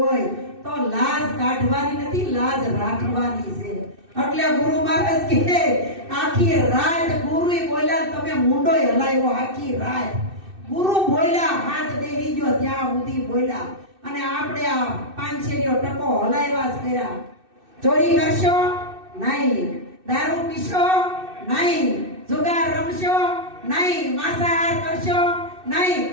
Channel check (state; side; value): late; left; 2.6 ms